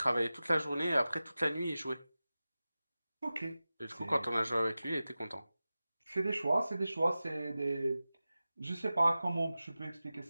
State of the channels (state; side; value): inverted; both; correlation -0.96